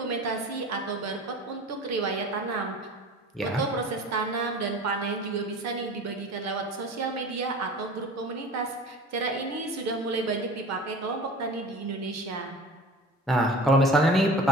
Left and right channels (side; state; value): both; normal; correlation 0.39